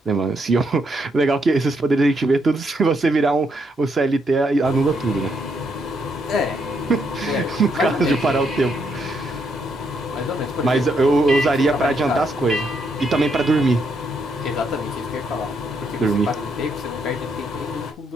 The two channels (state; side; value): normal; both; correlation 0.76